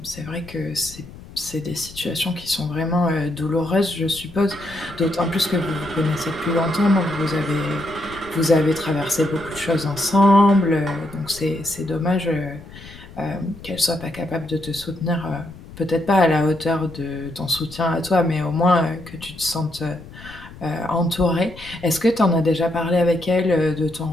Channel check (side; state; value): left; noise; rumble, 17 dB below the sound